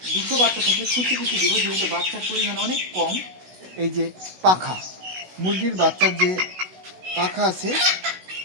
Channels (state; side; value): late; left; 16 ms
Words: 200 বাচ্চা থাকলে কুচি কুচি দেবো, যেহেতু বাচ্চার পরিমাণ অনেক কম। এই যে পাখা, মুরগির বাচ্চার যে পাখা আছে,